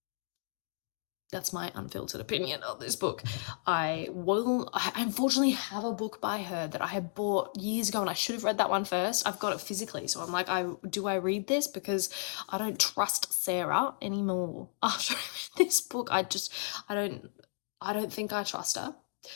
That's my unfiltered opinion of this book. I unfortunately have a book by her that I had bought years ago, and I should have read that one first. I've got it physically, so I'm like, do I read this? Because I don't trust Sarah anymore. After I read this book, I don't think I trust her.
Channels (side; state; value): right; silent; digital silence